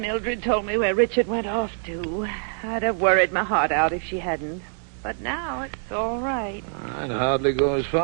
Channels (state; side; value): silent; left; 62 dB below the other